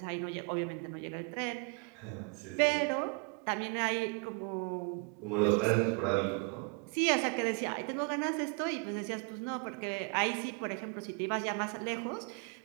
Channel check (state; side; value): quieter; left; 33.6 dB